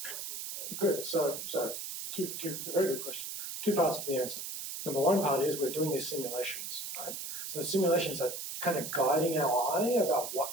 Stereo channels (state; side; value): noise; right; hiss, 6 dB below the sound